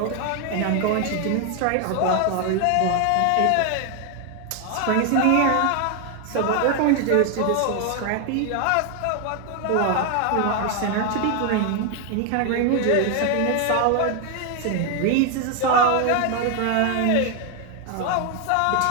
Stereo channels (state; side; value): different; both; correlation 0.01